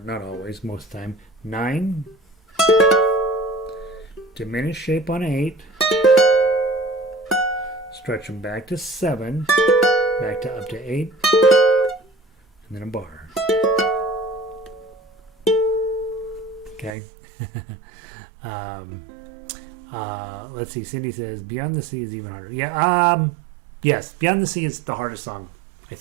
always, most of the time. 9, diminished shape on 8, stretch them back to 7, back to up to 8, and then a bar. Okay. Let's see. Cindy says, Beyond the Sea is even harder. Yeah, yes, Beyond the Sea is the hardest song, I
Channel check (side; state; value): left; drops out; at 16.9 s